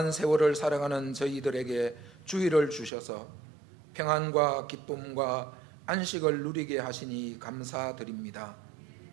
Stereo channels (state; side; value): drops out; left; at 2.9 s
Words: 세월을 살아가는 저희들에게 주의를 주셔서 평안과 기쁨과 안식을 누리게 하시니 감사드립니다.